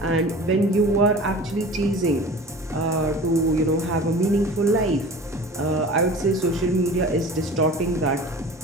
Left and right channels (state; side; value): normal; both; correlation 0.39